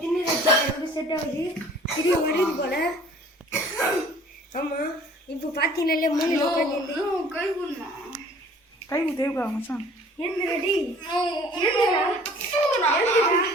தின்னு வச்சு செட் ஆகுது. திரும்பி வருது போல. ஆமாம் இப்போ பார்த்தீங்கன்னாலே மூணு கை தேவைக்கா மச்சான். என்ன ரெடி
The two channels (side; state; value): both; normal; correlation 0.52